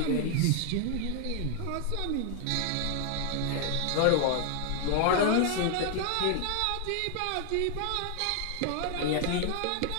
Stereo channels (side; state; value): both; different; correlation 0.00